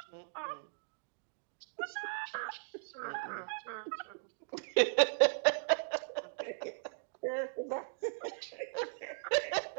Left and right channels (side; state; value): left; silent; digital silence